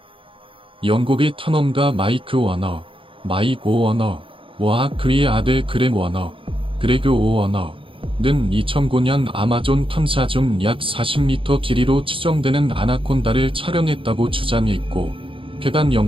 영국의 탐험가 마이크 워너와 그의 아들 그레그 오워너는 2009년 아마존 탐사 중 약 40m 길이로 추정되는 아나콘다를 촬영했다고 주장했고 해당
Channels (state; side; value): late; left; 0.25 ms